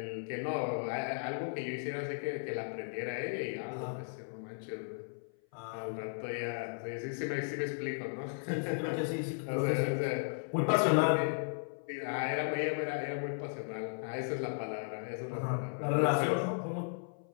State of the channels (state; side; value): silent; right; 54 dB below the other